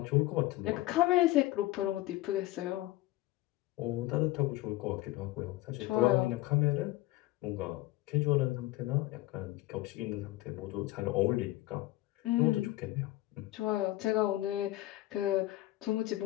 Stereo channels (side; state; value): right; quieter; 17.4 dB